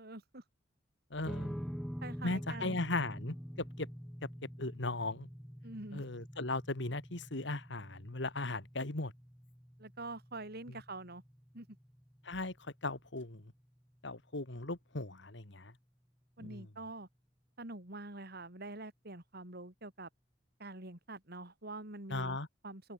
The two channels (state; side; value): normal; both; correlation 0.24